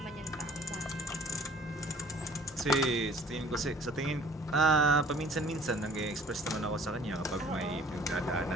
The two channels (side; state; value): both; normal; correlation 0.52